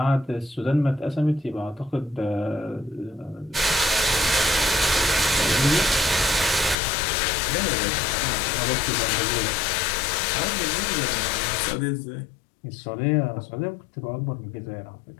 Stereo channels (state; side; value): drops out; right; at 6.8 s